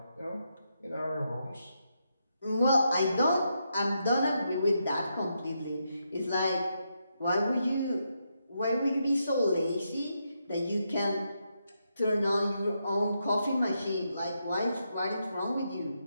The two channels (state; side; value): inverted; both; correlation -0.82